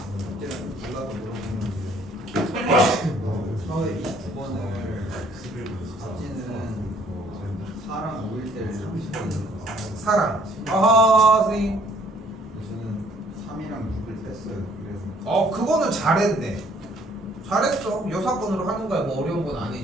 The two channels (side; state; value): both; normal; correlation 0.61